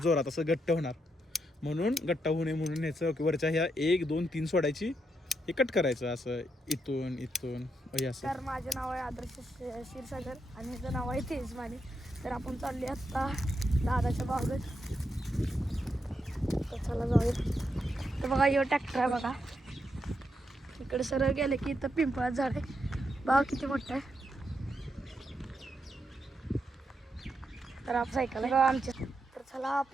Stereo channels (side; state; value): both; normal; correlation 0.81